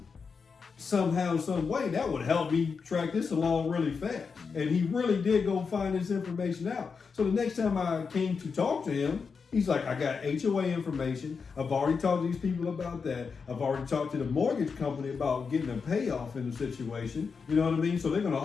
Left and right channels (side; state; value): right; quieter; 5.4 dB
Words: somehow, some way, that would help me track this along really fast. And he really did go find this information out. So the next time I came to talk to him, he's like, I got HOA information. I've already talked to these people about that. I've already talked to the mortgage company about getting a payoff in the situation. You know what I mean? So they're going to